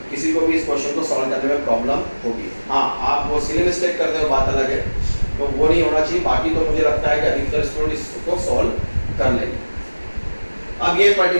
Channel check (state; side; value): inverted; both; correlation -1.00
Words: किसी को भी इस क्वेश्चन को सॉल्व करने में प्रॉब्लम होगी। हाँ, आप वो सिली मिस्टेक करते हो बात अलग है, तो वो नहीं होना चाहिए। बाकी तो मुझे लगता है कि अधिकतर स्टूडेंट इसको सॉल्व कर लेंगे। अब ये